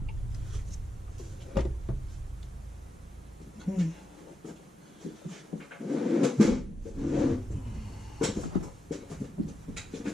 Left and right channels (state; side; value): normal; both; correlation 0.86